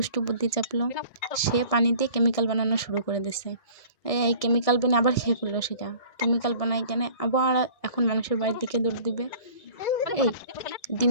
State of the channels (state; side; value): late; right; 1.7 ms